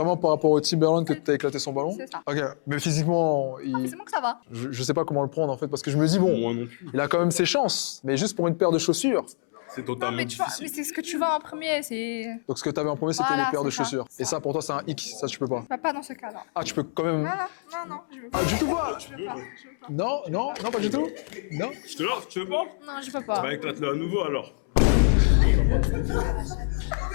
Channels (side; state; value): right; silent; 61 dB below the other